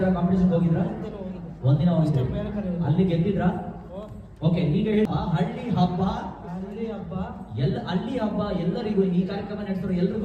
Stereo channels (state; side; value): identical; both; correlation 1.00